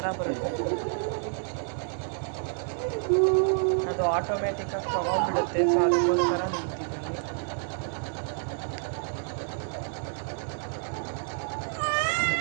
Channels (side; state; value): left; silent; 59 dB below the other